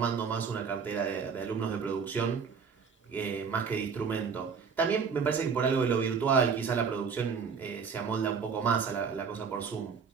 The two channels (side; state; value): left; quieter; 6.0 dB